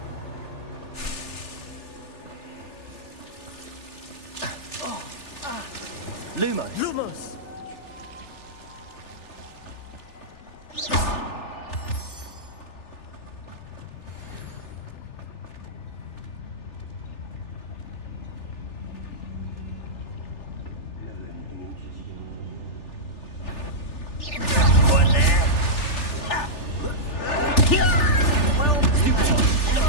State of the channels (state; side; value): late; right; 3.4 ms